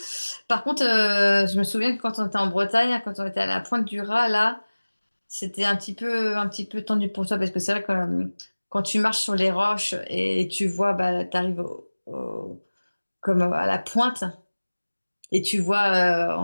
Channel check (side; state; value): both; inverted; correlation -1.00